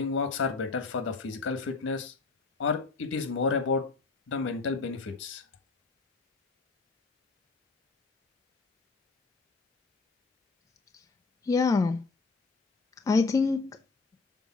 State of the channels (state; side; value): quieter; right; 4.1 dB